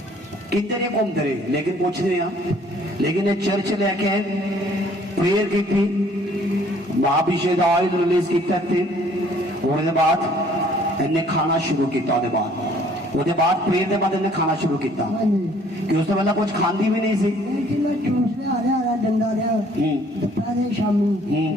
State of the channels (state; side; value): normal; both; correlation 0.59